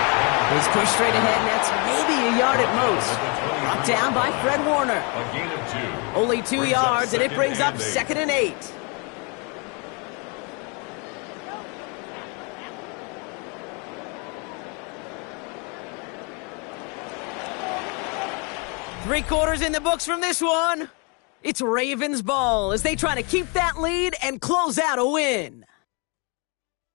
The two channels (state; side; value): quieter; right; 33.1 dB